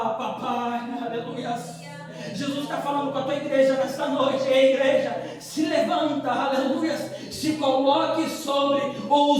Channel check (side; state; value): both; identical; correlation 1.00